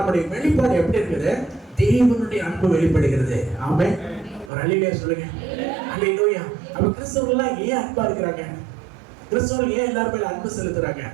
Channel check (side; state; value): left; drops out; at 4.5 s